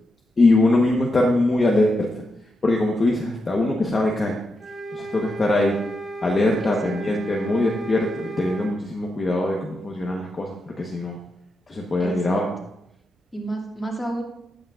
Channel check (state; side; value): normal; both; correlation 0.86